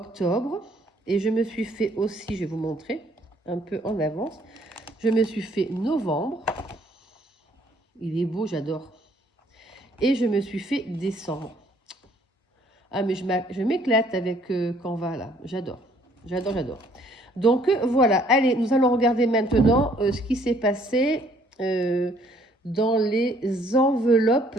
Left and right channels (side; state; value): both; normal; correlation 0.62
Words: Et je me suis fait aussi, je vais vous montrer un peu en avance, je me suis fait novembre. Il est beau, j'adore. Et je me suis fait décembre. Ah, mais je m'éclate avec Canva, là. J'adore. J'adore, j'adore. Donc, voilà. Allez, nous allons regarder maintenant ce qui s'est passé dans les enveloppes